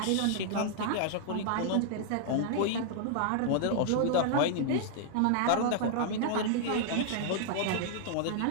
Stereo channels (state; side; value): different; both; correlation -0.01